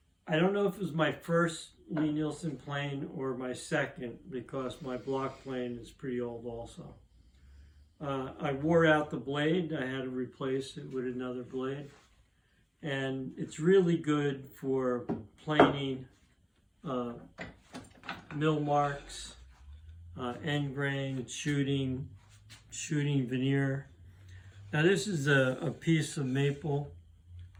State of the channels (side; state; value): both; identical; correlation 1.00